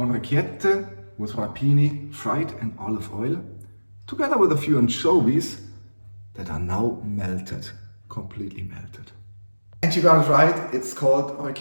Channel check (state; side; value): inverted; both; correlation -1.00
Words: with rapini fried in olive oil, together with a few anchovies that are now melted, completely melted. And you got it right, it's called